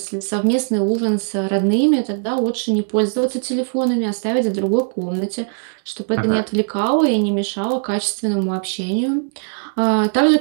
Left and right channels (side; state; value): left; silent; digital silence